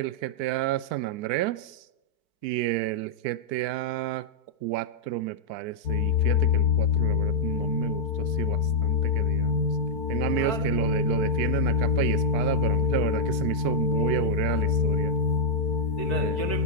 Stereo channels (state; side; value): late; right; 4.6 ms